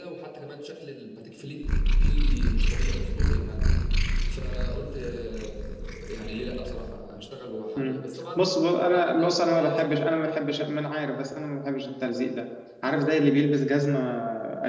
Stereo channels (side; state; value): both; identical; correlation 1.00